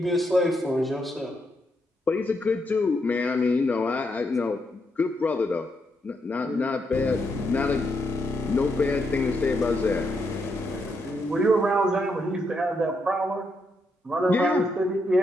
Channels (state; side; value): normal; both; correlation 0.79